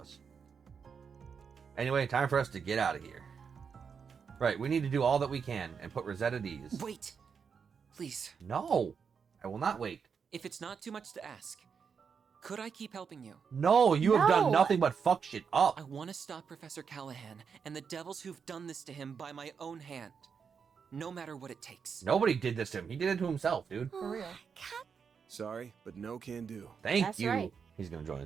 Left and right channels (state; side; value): quieter; left; 6.3 dB